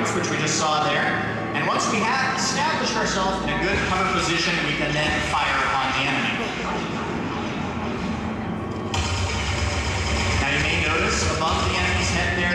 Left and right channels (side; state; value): both; identical; correlation 1.00